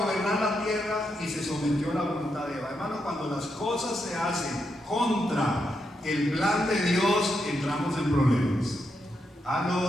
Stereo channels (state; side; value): normal; both; correlation 0.83